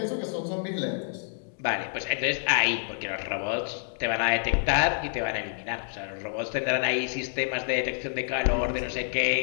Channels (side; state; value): right; silent; 59 dB below the other